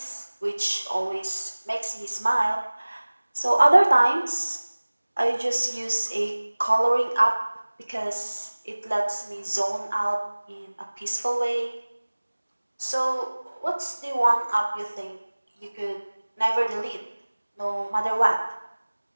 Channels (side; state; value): both; inverted; correlation -1.00